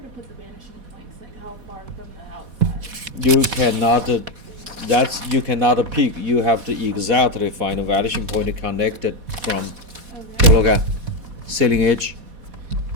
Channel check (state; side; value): late; left; 4.1 ms